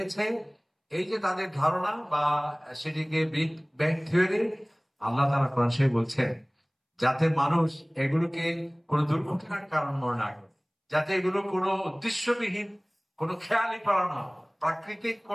এই যে তাদের ধারণা বা সেটিকে বিগ ব্যাং থিওরি, আল্লাহ তাআলা কোরআন শরীফে বলছেন যাতে মানুষ এগুলোকে কোনো দুর্ঘটনার কারণ মনে না করে, যাতে এগুলো কোনো উদ্দেশ্যবিহীন কোনো খেয়ালিপনা নয়, প্রাকৃতিক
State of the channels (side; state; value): both; identical; correlation 1.00